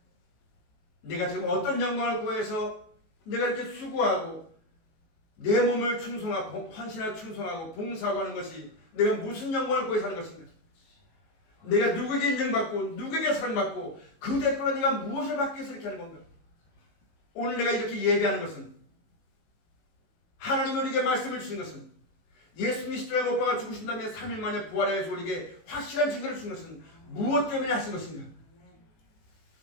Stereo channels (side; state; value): right; late; 19 ms